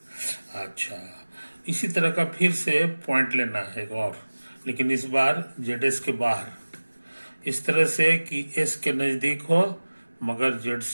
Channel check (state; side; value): inverted; both; correlation -1.00